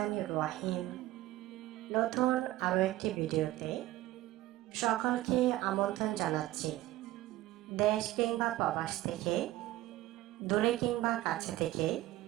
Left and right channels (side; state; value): left; quieter; 16.2 dB